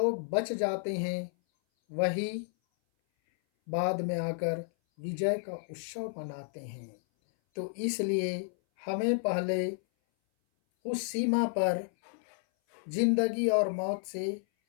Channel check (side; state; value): right; silent; 57 dB below the other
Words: बच जाते हैं, वही बाद में आकर विजय का उत्सव मनाते हैं। तो इसलिए हमें पहले उस सीमा पर जिंदगी और मौत से